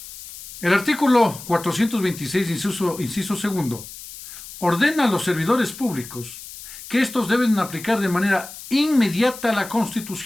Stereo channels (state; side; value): noise; left; hiss, 14 dB below the sound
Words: El artículo 426, inciso segundo, ordena a los servidores públicos que estos deben aplicar de manera inmediata la